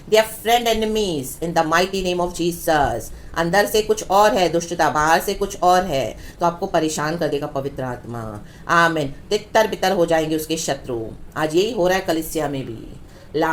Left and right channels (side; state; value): both; identical; correlation 1.00